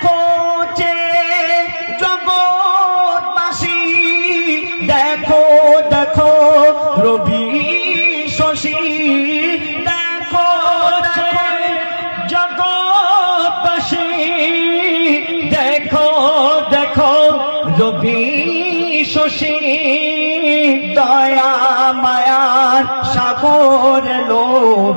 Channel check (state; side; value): inverted; both; correlation -1.00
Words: যে জগৎবাসী, দেখো দেখো রবি শশী, দেখো দেখো জগৎবাসী, দেখো দেখো রবি শশী, দয়া মায়ার সাগর লো